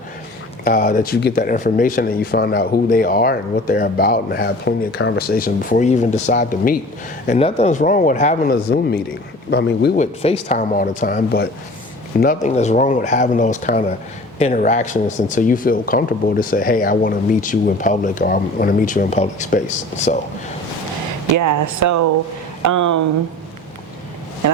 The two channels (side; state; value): both; normal; correlation 0.42